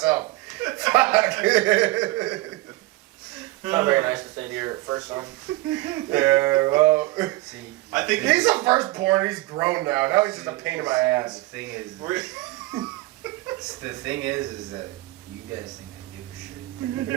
Fuck. It's not very nice to say to your first son. Yeah. Well, See, I think he's the firstborn. He's grown now. Now he's just a pain in my the ass. thing is, We're- is that you guys think I give a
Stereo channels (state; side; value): quieter; left; 19.6 dB